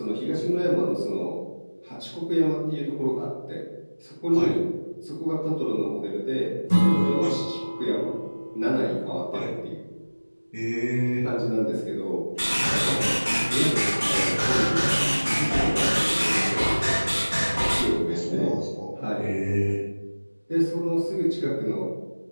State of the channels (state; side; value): inverted; both; correlation -1.00